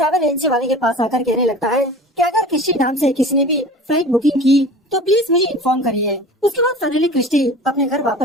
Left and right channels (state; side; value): normal; both; correlation 0.39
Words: एजेंसी वाले के पास आकर कहने लगता है कि अगर क्रिस्टी नाम से किसी ने भी फ्लाइट बुकिंग की तो प्लीज मुझे इन्फॉर्म करिए। उसके बाद फाइनली क्रिस्टी अपने घर